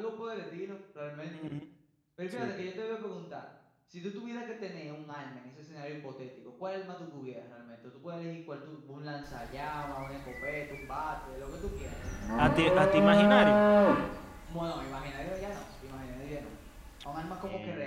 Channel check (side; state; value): both; identical; correlation 1.00